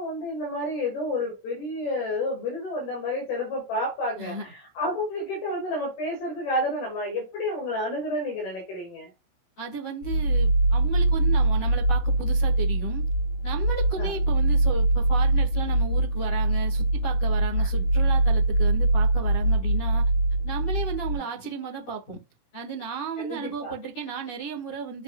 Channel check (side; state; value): right; late; 16 ms